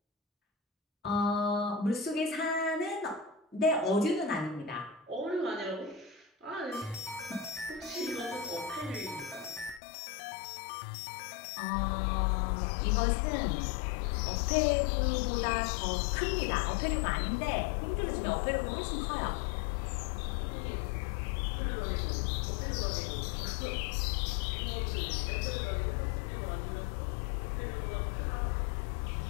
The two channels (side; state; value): right; drops out; at 9.8 s